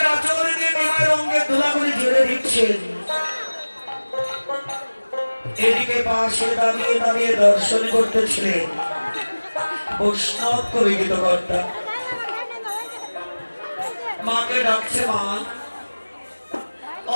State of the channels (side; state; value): both; inverted; correlation -1.00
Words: আঁচল দিয়ে মায়ের অঙ্কের গোলা করে ঝেড়ে দিচ্ছেন। এদিকে পাশে দাঁড়িয়ে দাঁড়িয়ে দর্শন করতেছিলেন বৈষ্ণব কবি গীতকর্তা। মাকে ডাকছে, মা ও